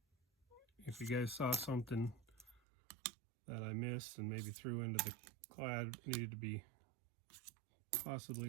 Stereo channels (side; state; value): left; drops out; at 2.6 s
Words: if you guys saw something that I missed and maybe threw into the Clad needed to be